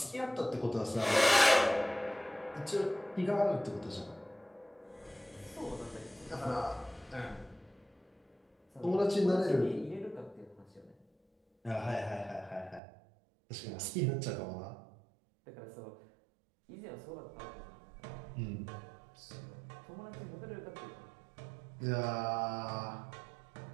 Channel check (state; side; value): drops out; left; at 12.8 s